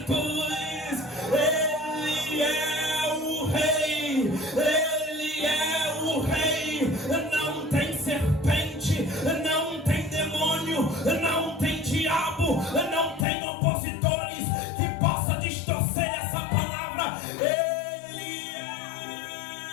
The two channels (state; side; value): drops out; right; at 13.2 s